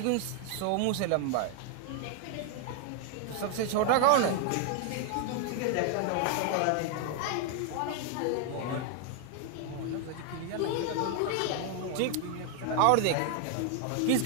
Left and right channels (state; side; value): different; both; correlation 0.00